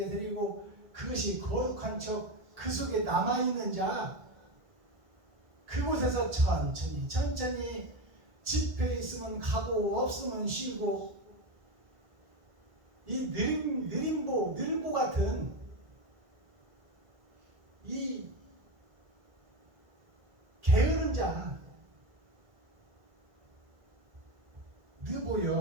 드리고 그것이 거룩한 척 그 속에 남아있는 자, 그곳에서 천천히 집회 있으면 가고 없으면 쉬고, 이 느림보 같은 이 게으른 자,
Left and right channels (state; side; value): late; left; 1.8 ms